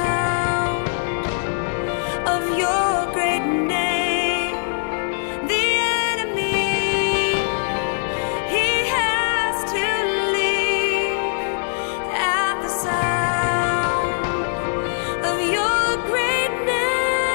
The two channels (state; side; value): silent; right; 63 dB below the other